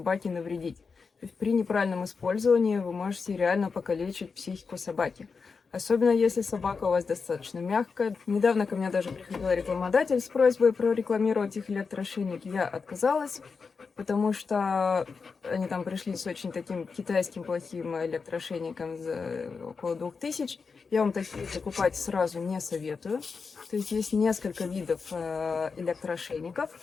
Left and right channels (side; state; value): right; quieter; 5.0 dB